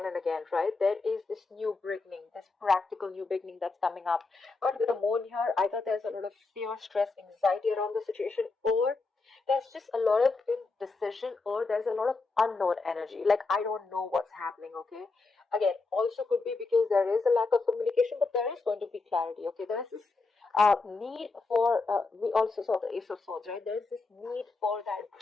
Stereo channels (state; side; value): quieter; right; 3.9 dB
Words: and again, right? There is this new beginning, this practical new beginning that's coming up. But with the moon here, either there's a lot of fear, stress, anxiety around the situation, or there's just a lot of indecision, or there's a lot of unknown energy. Like, I don't know what's happening, okay? Again, also could be because there is a lack of communication, but there is going to be clarity, okay? There's this need for, we also saw the Ace of Swords, right? There's this need for that